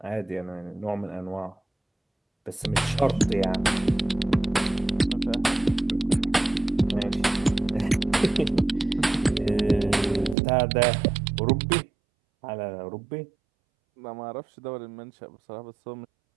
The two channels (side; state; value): left; drops out; at 10.4 s